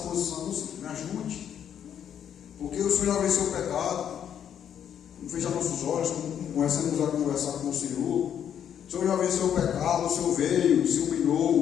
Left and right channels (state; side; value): quieter; right; 9.1 dB